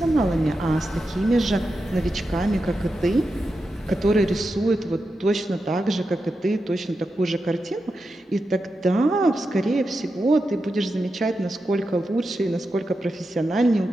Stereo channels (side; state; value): both; normal; correlation 0.89